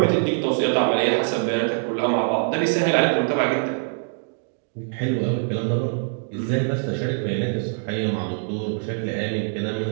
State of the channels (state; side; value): silent; left; 63 dB below the other